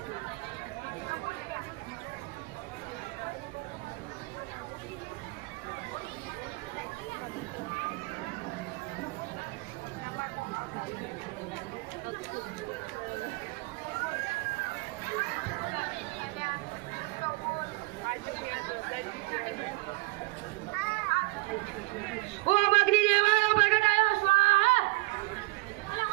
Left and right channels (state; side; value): quieter; left; 23.7 dB